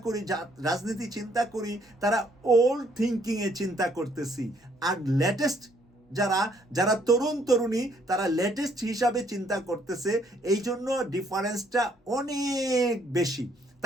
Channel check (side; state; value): both; normal; correlation 0.67